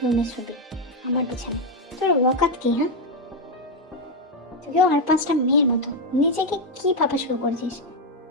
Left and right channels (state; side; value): normal; both; correlation 0.04